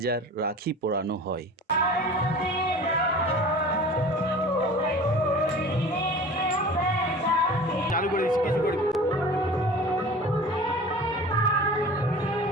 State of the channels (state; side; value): normal; both; correlation 0.40